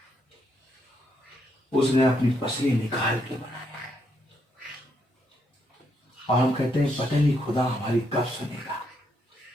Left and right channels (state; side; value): normal; both; correlation 0.76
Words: उसने अपनी पसली निकाल के बनाया। और हम कहते हैं पता नहीं खुदा हमारी कब सुनेगा।